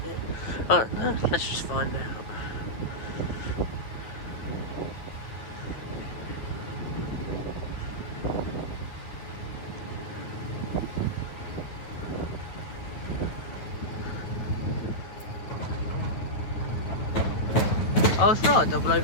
it? I don't know. Let's just find out. Oh, it's not 004.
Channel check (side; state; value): right; late; 9.2 ms